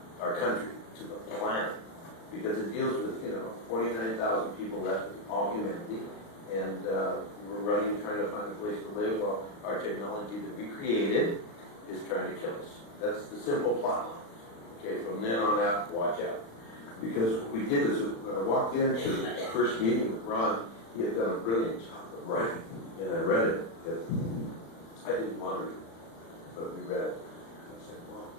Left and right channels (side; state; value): right; late; 35 ms